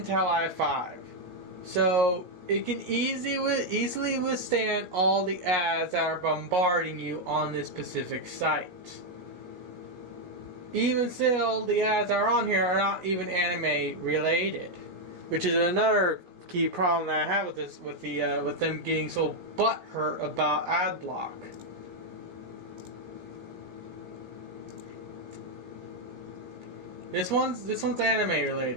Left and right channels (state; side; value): late; left; 17 ms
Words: i5, so it can easily withstand all the ads that are bombarding you on this specific site. Even still, the ads that are on here are not even anime related, which is another key problem that I have with this, with them getting so butthurt about adblock. This one's anime